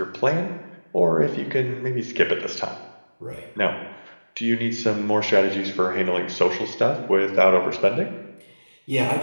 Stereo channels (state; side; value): inverted; both; correlation -1.00